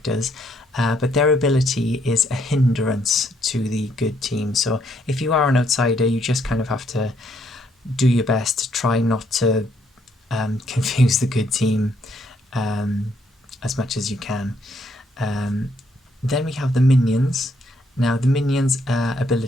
But their ability is a hindrance to the good team. So if you are an outsider, you just kind of have to do your best to try not to confuse the good team as much as you can. Then we have the minions. Now the minions'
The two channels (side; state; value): both; normal; correlation 0.71